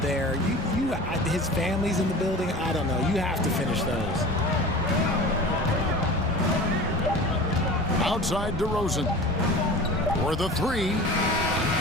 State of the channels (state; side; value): normal; both; correlation 0.37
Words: there. His family's in the building. I don't know. You have to finish those. Outside DeRozan. For the three.